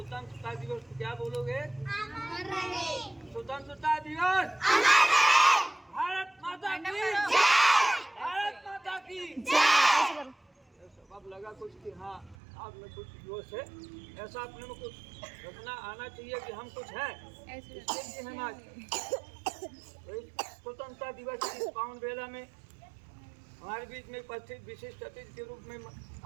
दिवस, क्या बोलोगे? स्वतंत्रता दिवस, भारत माता की, भारत माता की। अब लगा कुछ कि हाँ आप में कुछ जोश है, ऐसा अपने में कुछ रखना आना चाहिए कि हम कुछ है। इसके लिए हम आज स्वतंत्रता दिवस की पावन बेला में हमारे बीच में उपस्थित विशिष्ट अतिथि के रूप में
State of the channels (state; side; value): drops out; left; at 12.4 s